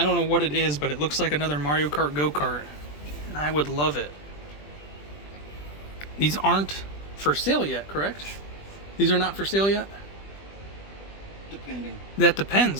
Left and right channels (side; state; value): right; late; 20 ms